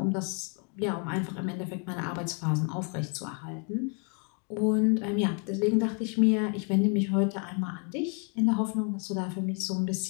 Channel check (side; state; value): right; quieter; 38.5 dB